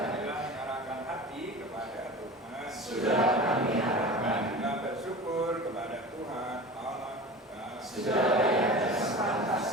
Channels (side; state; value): both; normal; correlation 0.34